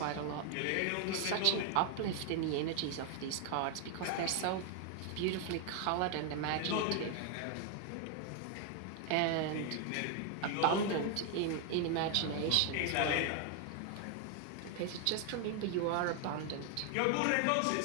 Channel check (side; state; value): both; different; correlation 0.01